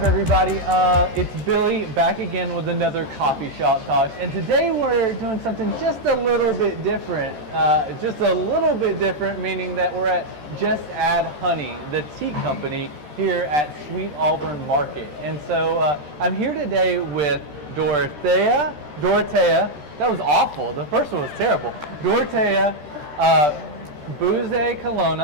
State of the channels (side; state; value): left; late; 13 ms